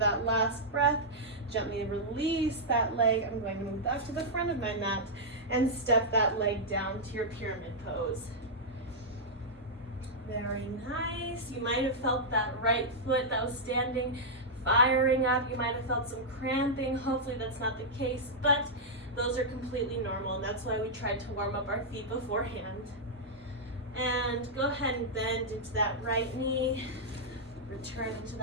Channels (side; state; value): both; normal; correlation -0.07